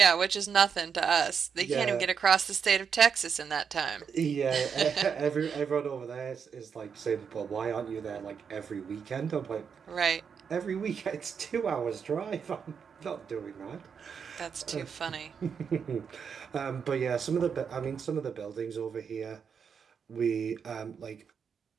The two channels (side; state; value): left; quieter; 6.7 dB